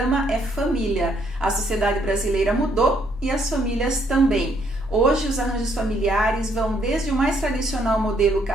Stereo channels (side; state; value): both; normal; correlation 0.69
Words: é família. A sociedade brasileira mudou e as famílias também. Hoje, os arranjos familiares vão desde o mais tradicional modelo